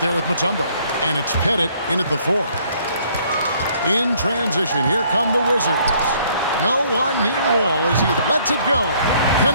with Mutombo, and it's Pettit in at the 4. In transition, here come the Wizards. No one near Wall as he lets it go.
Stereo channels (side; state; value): both; inverted; correlation -0.63